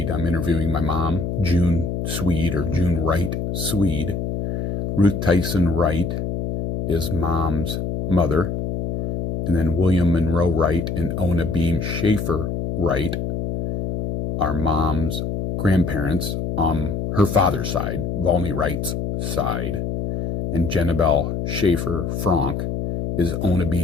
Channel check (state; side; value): noise; left; hum, 2 dB below the sound